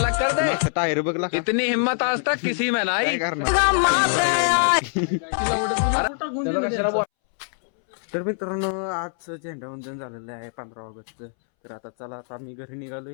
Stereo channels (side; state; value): right; silent; 63 dB below the other